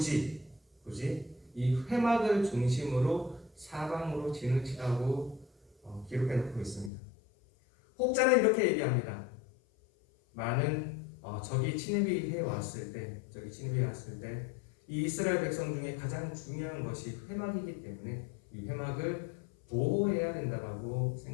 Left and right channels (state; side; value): drops out; right; at 6.9 s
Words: 이 회막을 중심으로 사방으로 진을 치라고 기록해 놓고 있습니다. 혹자는 이렇게 얘기합니다. 많은 적이 침입해 왔을 때 이 이스라엘 백성 중에 가장 중요한 것이 회막이기 때문에 이 회막을 보호해야 된다고